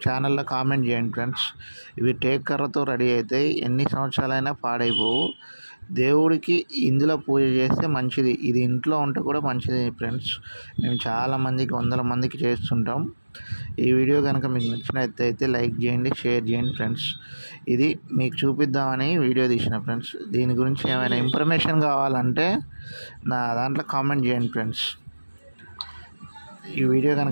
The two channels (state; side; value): inverted; both; correlation -1.00